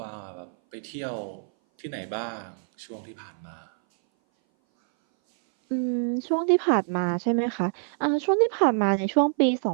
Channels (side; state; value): left; silent; 58 dB below the other